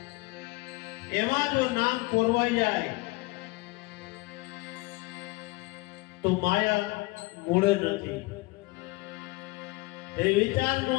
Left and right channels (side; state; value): right; quieter; 23.2 dB